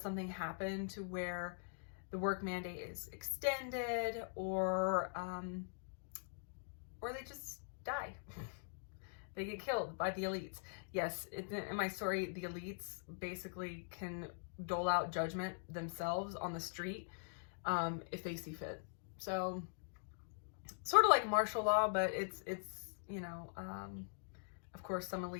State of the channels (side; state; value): right; silent; digital silence